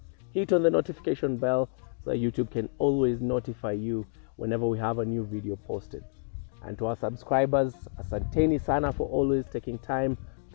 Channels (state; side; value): silent; right; 58 dB below the other